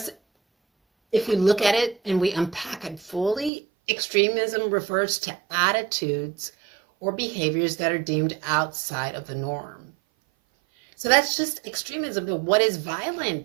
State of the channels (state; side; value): drops out; left; at 3.5 s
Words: if we look at it and we unpack it fully, extremism refers to attitudes or behaviors that are deemed outside of the norm. So that's just extremism. But what is